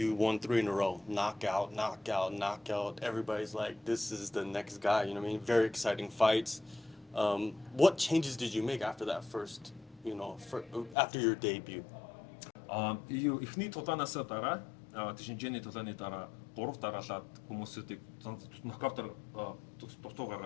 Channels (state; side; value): drops out; right; at 11.0 s